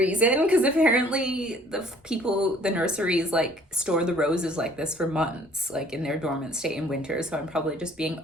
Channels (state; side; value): normal; both; correlation 0.56